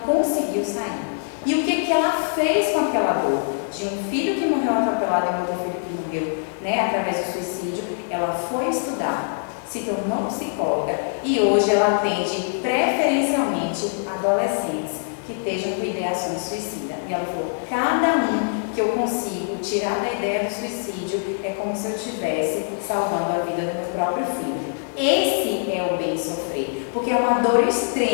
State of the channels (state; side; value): silent; right; digital silence